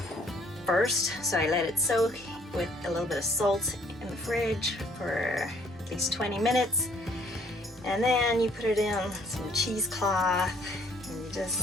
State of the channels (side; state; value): both; normal; correlation 0.62